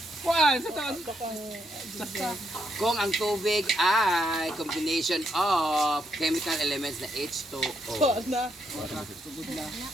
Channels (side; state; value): both; normal; correlation 0.77